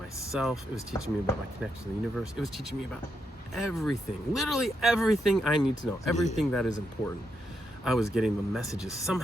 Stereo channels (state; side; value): normal; both; correlation 0.82